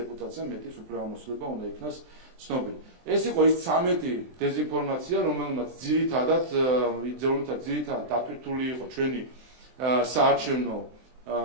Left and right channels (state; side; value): late; left; 23 ms